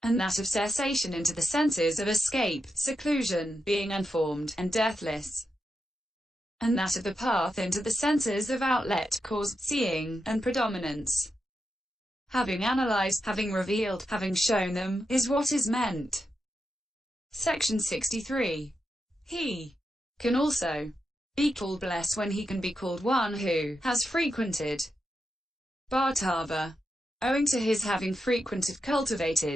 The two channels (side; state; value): both; normal; correlation 0.87